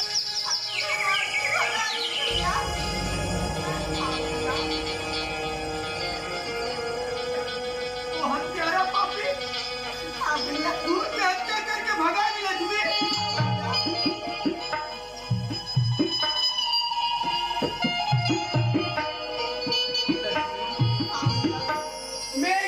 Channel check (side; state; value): both; identical; correlation 1.00